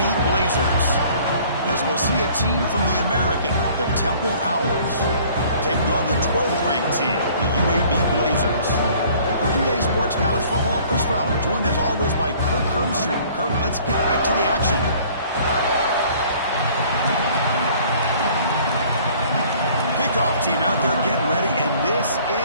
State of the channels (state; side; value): inverted; both; correlation -0.54